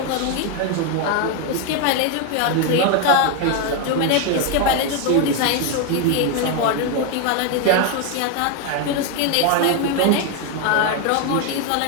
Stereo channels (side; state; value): both; different; correlation 0.01